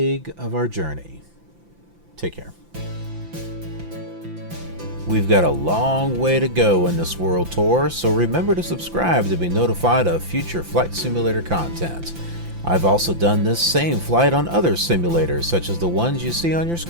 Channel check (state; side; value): late; left; 5.9 ms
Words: of our journey. Take care. We've got a long way to go in this world tour, so remember to subscribe to be notified of future Flight Simulator content. I've also done this same flight on other simulators, such as the ones you see on your